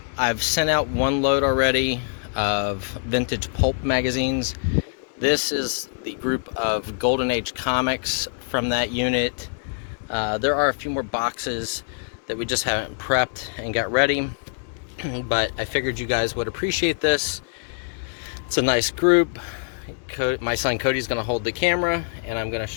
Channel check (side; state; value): right; silent; digital silence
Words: I've sent out one load already of vintage pulp magazines. This is the group of Golden Age comics from that unit. There are a few more boxes that we just haven't prepped and got ready, but I figured you guys would appreciate this. It's a nice group. My son Cody's gonna hold the camera, and I'm gonna